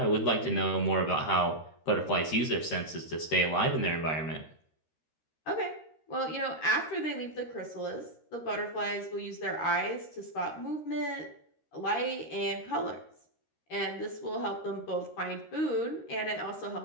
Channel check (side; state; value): right; late; 13 ms